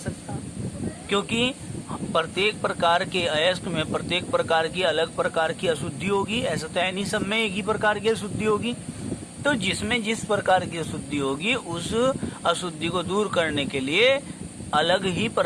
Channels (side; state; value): both; identical; correlation 1.00